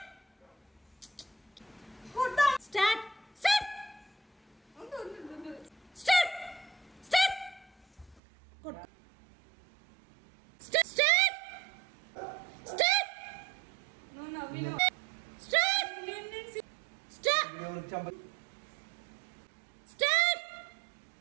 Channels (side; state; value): left; drops out; at 8.2 s